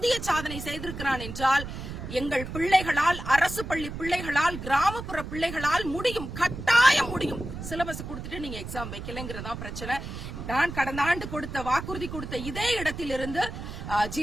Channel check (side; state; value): right; noise; rumble, 8 dB below the sound